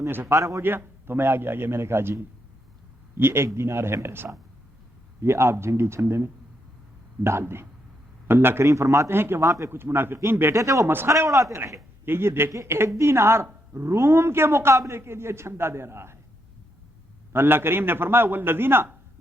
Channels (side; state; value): both; normal; correlation 0.79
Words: سے فارغ ہو گیا تو میں آگے میں نے کہا جی یہ 1 دینار ہے میرے ساتھ, یہ آپ جنگی چھندے میں ڈال دیں. اللہ کریم فرماتے ہیں کہ وہاں پہ کچھ منافقین بیٹھے تھے, وہ مسخرے اڑاتے رہے کہ یہ دیکھیں 1 دینار روم کے مقابلے کے لیے چھندا دے رہا ہے. اللہ کریم نے فرمایا والذین